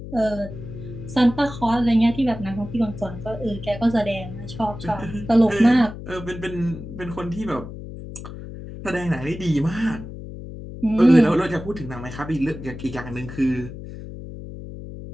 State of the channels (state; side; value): noise; left; hum, 11 dB below the sound